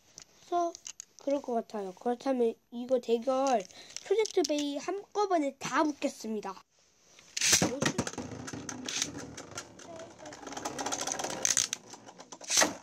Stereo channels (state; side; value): identical; both; correlation 1.00